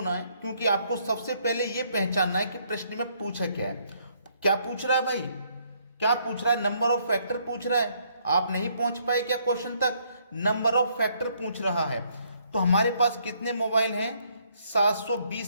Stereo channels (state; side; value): inverted; both; correlation -0.69